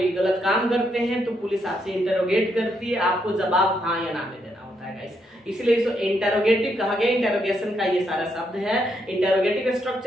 गलत काम करते हैं तो पुलिस आपसे इंटरोगेट करती है, आपको जवाब हाँ या ना में देना होता है गाइस, इसलिए इसको इंटरोगेटिव कहा गया। इंटरोगेशन का ये सारा शब्द है। इंटरोगेटिव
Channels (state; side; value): normal; both; correlation 0.77